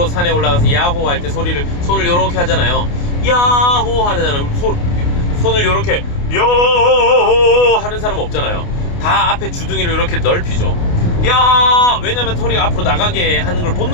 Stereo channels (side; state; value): right; late; 29 ms